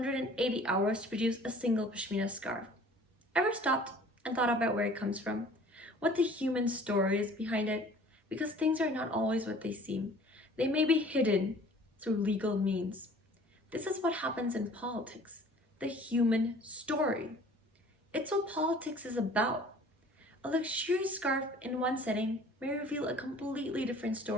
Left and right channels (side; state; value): both; normal; correlation 0.50